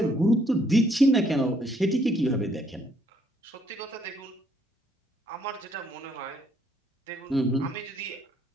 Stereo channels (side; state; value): both; normal; correlation 0.68